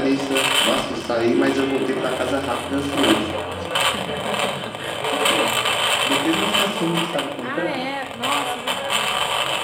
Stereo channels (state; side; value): identical; both; correlation 1.00